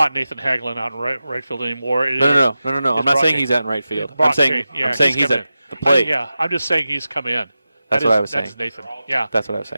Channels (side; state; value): both; inverted; correlation -0.93